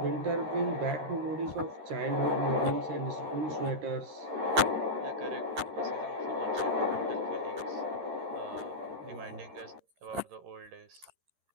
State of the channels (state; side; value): late; left; 13 ms